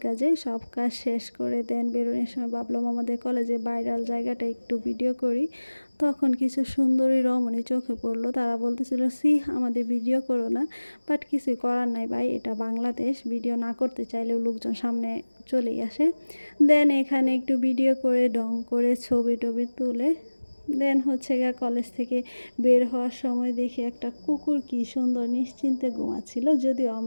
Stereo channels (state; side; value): inverted; both; correlation -1.00